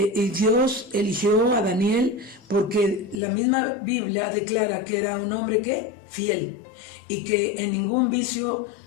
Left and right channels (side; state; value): right; drops out; at 3.2 s